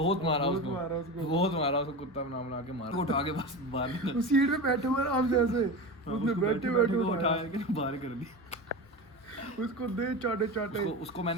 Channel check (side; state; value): both; normal; correlation 0.25